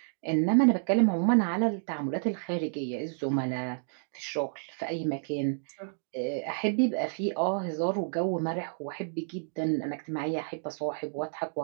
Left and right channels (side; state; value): left; silent; digital silence